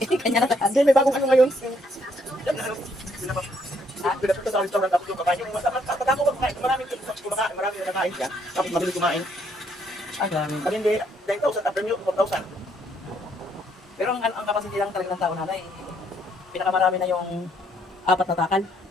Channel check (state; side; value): normal; both; correlation 0.70